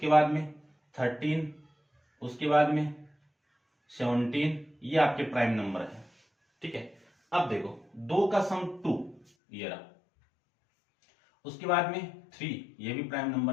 बाद में 13, उसके बाद में 17, ये आपके प्राइम नंबर है। ठीक है, अब देखो 2 का सम 2 ये रहा, उसके बाद में 3 ये भी प्राइम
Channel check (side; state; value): right; drops out; at 9.2 s